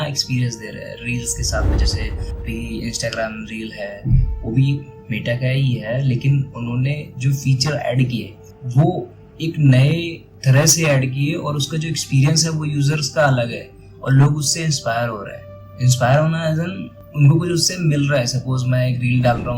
एक्सपीरियंस दे रहे हैं रील्स के साथ में। जैसे भी इंस्टाग्राम रील है वो भी मेटा का ही है, लेकिन उन्होंने जो फीचर ऐड किए वो एक नए तरह से ऐड किए और उसका जो एक्सपीरियंस है वो यूजर्स का अलग है और लोग उससे इंस्पायर हो रहे हैं। इंस्पायर होना एज एन उनको कुछ उससे मिल रहा है। सपोज मैं एक रील डाल रहा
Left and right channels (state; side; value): identical; both; correlation 1.00